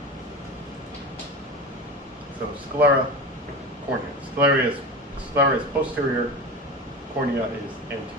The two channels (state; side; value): normal; both; correlation 0.27